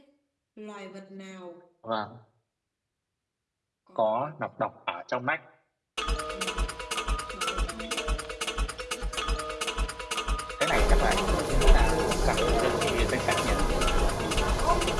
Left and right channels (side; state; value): both; identical; correlation 1.00